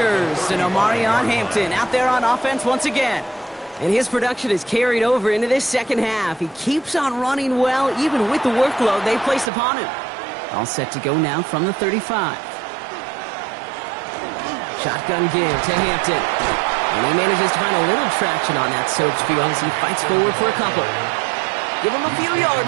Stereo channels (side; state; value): left; drops out; at 9.5 s